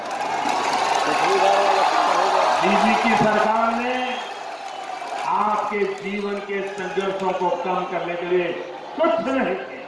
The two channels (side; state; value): both; identical; correlation 1.00